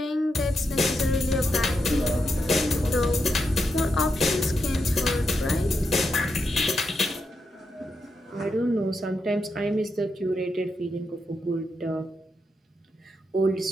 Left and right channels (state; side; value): normal; both; correlation 0.84